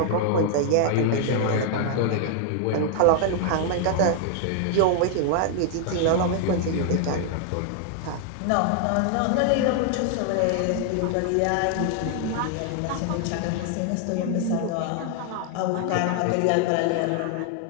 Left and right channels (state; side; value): different; both; correlation 0.00